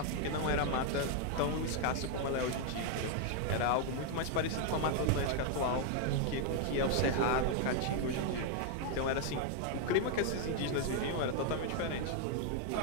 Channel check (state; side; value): different; both; correlation 0.00